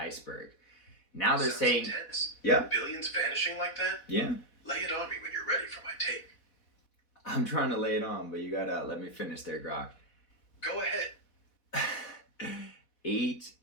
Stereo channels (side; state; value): right; late; 4.1 ms